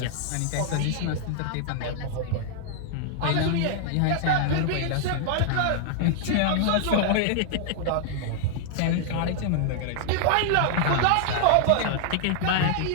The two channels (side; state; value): both; different; correlation -0.01